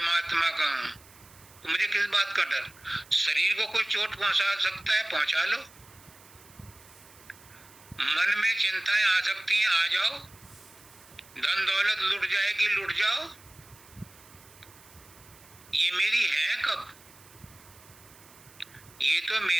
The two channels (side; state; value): right; noise; hiss, 24 dB below the sound